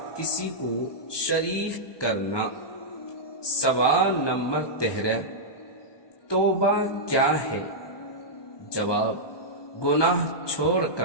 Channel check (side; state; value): right; late; 1.2 ms